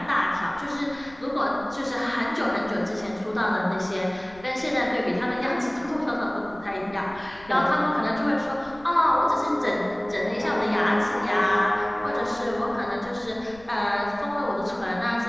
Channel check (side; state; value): left; noise; rumble, 23 dB below the sound